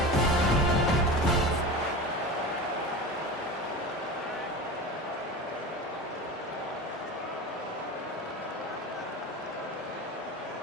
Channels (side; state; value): both; normal; correlation 0.30